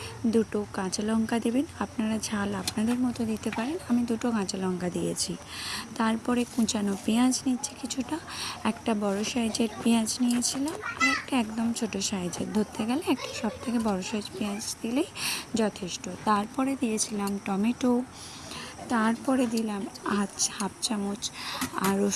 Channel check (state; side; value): identical; both; correlation 1.00